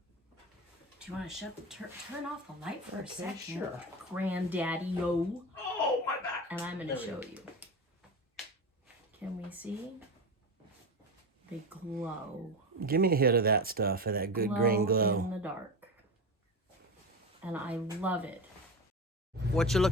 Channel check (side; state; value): both; normal; correlation 0.22